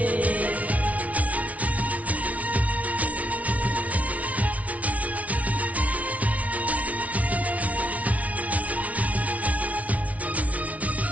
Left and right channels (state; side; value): late; left; 0.068 ms